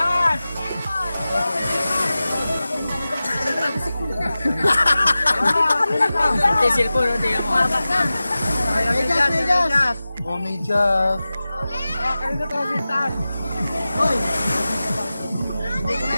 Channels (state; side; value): inverted; both; correlation -0.95